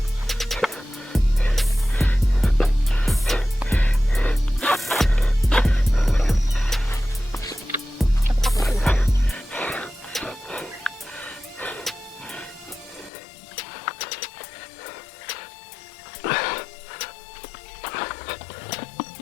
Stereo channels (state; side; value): drops out; right; at 13.1 s